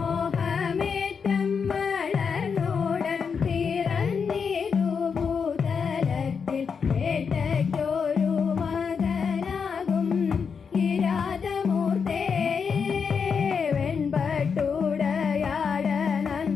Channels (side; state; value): right; quieter; 6.1 dB